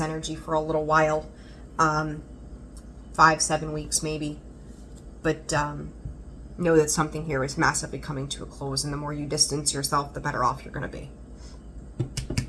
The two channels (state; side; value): identical; both; correlation 1.00